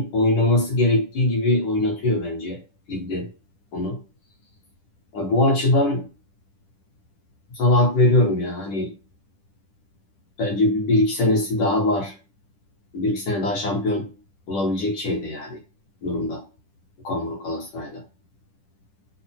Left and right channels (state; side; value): late; right; 10 ms